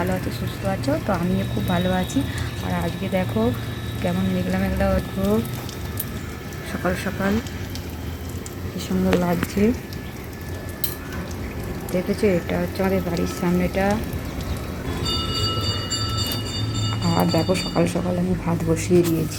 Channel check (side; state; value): both; identical; correlation 1.00